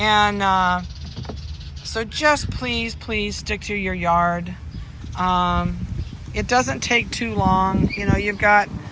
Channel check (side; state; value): both; identical; correlation 1.00